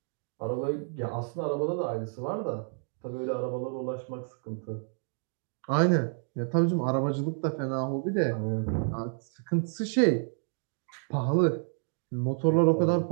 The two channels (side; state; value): left; silent; 58 dB below the other